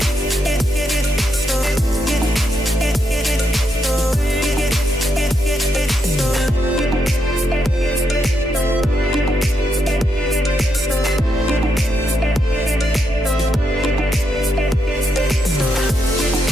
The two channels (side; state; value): both; normal; correlation 0.81